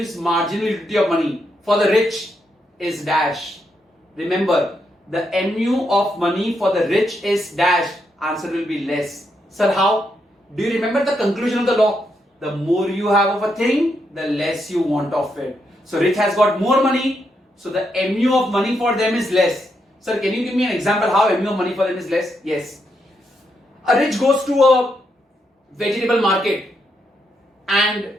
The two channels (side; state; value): both; normal; correlation 0.80